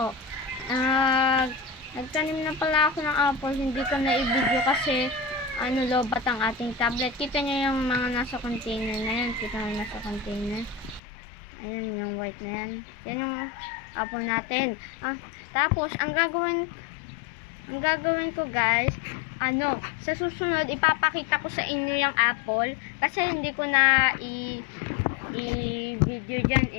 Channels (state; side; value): drops out; right; at 11.0 s